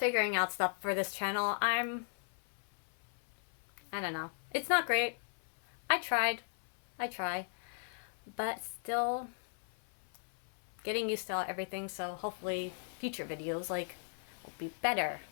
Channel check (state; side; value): silent; right; 53 dB below the other